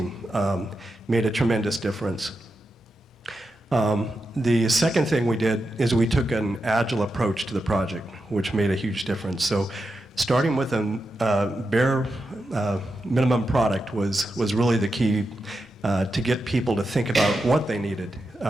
Made a tremendous difference. The second thing we did is we took an Agile approach to the project, which made a huge difference. So starting with a bare minimum product was really the key to get people to think about what they needed.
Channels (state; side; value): normal; both; correlation 0.88